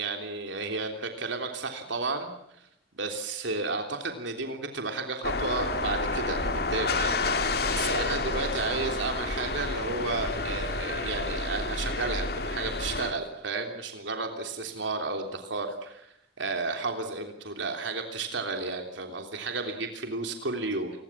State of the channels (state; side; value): normal; both; correlation -0.09